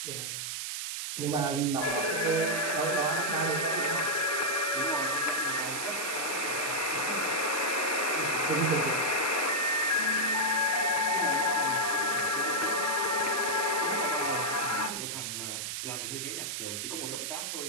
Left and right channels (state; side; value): noise; right; hiss, 4 dB below the sound